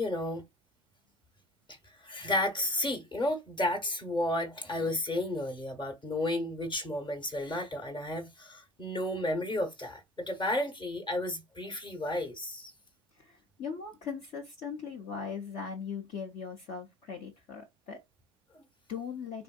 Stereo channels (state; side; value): normal; both; correlation 0.47